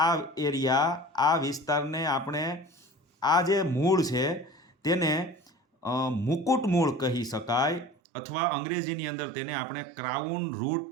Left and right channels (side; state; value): left; drops out; at 8.0 s